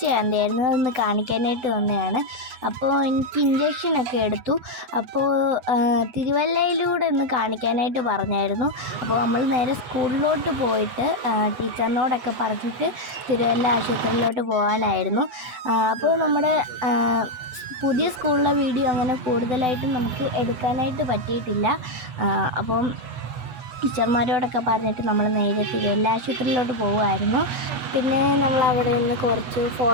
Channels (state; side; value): late; left; 8.2 ms